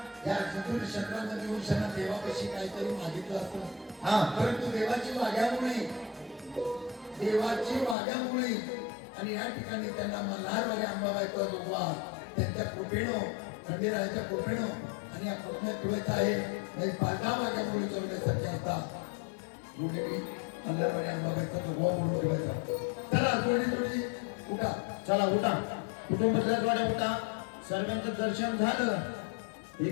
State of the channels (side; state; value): right; drops out; at 8.0 s